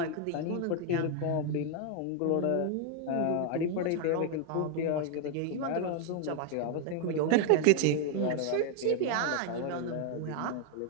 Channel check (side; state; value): both; different; correlation 0.00